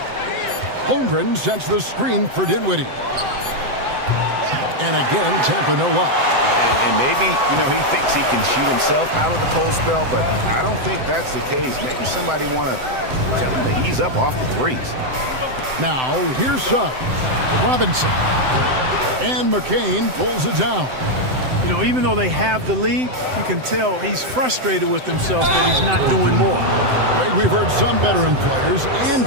Holmgren sets the screen for Dinwiddie. And again, Tampa no luck. And maybe, you know, he thinks he can shoot himself out of the cold spell, but I don't think that's the case. Maybe somebody want to tell him to ease up off the threes. Now, here's Suggs. Robinson. And McCain pulls it down. You know, even though they have the lead, you can tell he's frustrated with himself that he's not doing more. Greg, we've heard some veteran players and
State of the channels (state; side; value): late; left; 7.8 ms